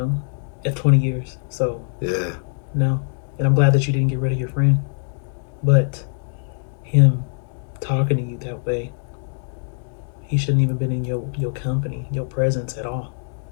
at 20 years. So yeah. No, and I'm glad that you didn't get rid of your friend, but him talking to you that way, he shouldn't even been in your company, your presence at all.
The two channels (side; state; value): right; silent; digital silence